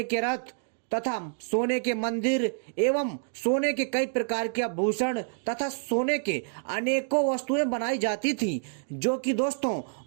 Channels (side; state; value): left; silent; digital silence